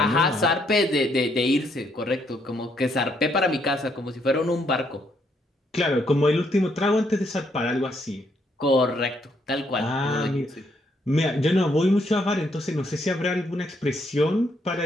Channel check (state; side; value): normal; both; correlation 0.73